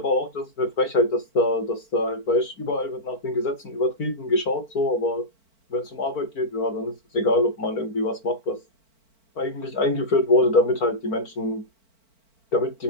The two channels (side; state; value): right; late; 4.5 ms